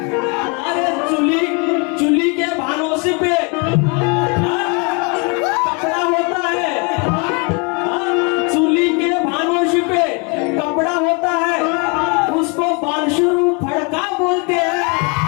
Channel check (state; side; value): quieter; right; 32.9 dB